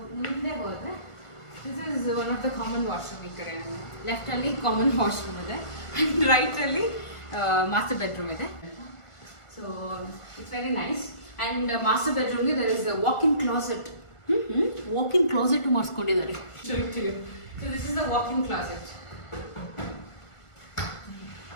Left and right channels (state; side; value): late; right; 1.5 ms